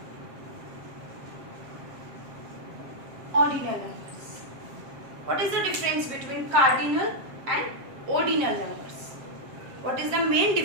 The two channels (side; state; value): left; late; 7.6 ms